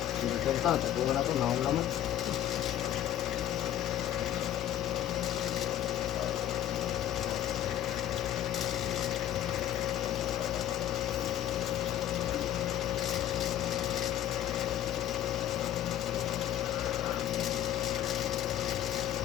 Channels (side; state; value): right; quieter; 11.4 dB